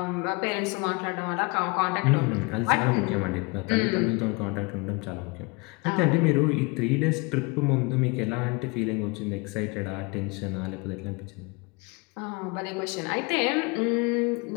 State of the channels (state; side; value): quieter; right; 28.1 dB